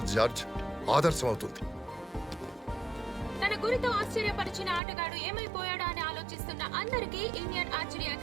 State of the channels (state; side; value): drops out; left; at 4.8 s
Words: జార్జ్, ఆదర్శం అవుతుంది. తన గురితో ఆశ్చర్యపరిచిన ఆటగాడు ఏమైపోయాడా అని ఆలోచిస్తున్న అందరికీ ఇండియన్ ఆర్చరీ